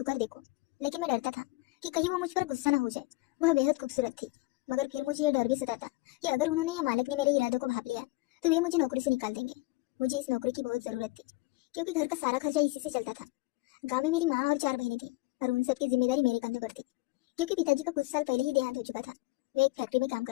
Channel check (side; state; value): right; quieter; 21.5 dB